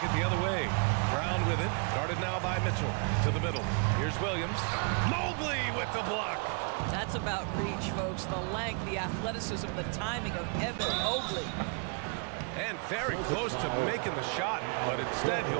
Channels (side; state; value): left; quieter; 37.4 dB